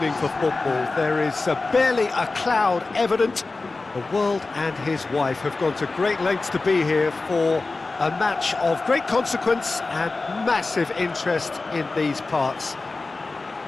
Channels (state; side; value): quieter; right; 3.6 dB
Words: for football. There is barely a cloud evident. The world and his wife have gone to great lengths to be here for a match of great consequence and massive interest in these parts.